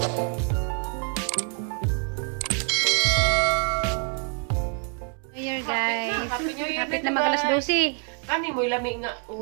Hapit na magalas 12. Kani mo ilami nga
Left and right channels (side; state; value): left; quieter; 37.9 dB